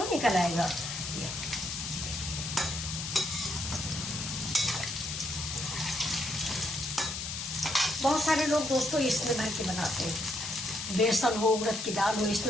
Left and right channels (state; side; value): noise; left; hiss, 5 dB below the sound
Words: निकल आएगा। बहुत सारे लोग दोस्तों इसमें भर के बनाते हैं। बेसन हो, उड़द की दाल हो,